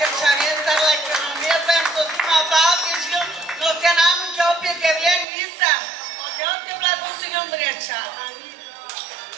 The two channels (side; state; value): left; drops out; at 5.2 s